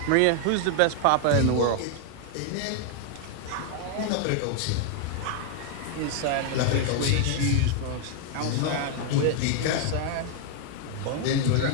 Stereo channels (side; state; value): both; different; correlation 0.00